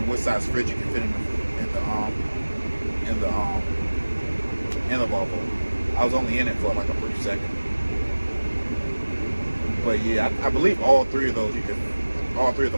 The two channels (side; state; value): both; inverted; correlation -1.00